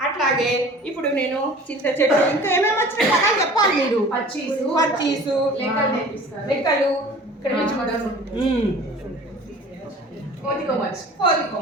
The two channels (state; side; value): normal; both; correlation 0.45